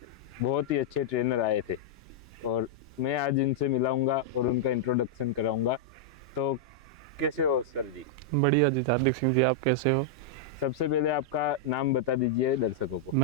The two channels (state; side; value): normal; both; correlation -0.05